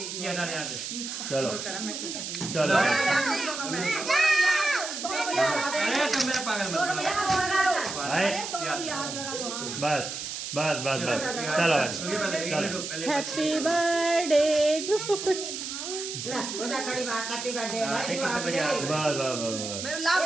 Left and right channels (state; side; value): noise; right; hiss, 6 dB below the sound